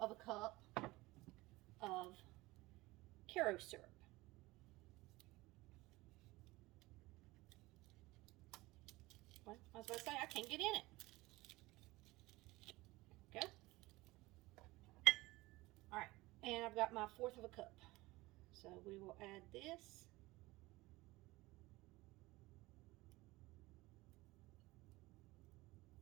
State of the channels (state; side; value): quieter; left; 20.5 dB